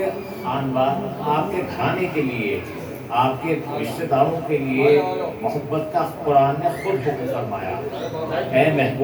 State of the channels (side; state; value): both; identical; correlation 1.00